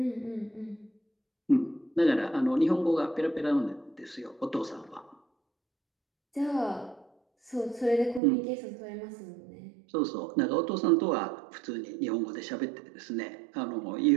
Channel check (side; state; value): left; drops out; at 8.2 s